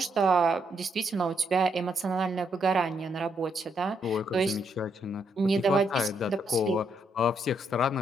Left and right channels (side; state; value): both; normal; correlation 0.76